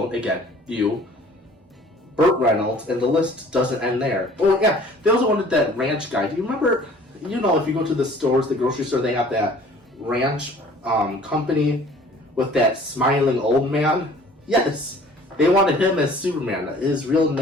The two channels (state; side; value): normal; both; correlation 0.51